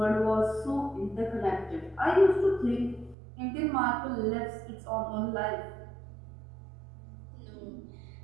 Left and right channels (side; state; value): left; drops out; at 3.2 s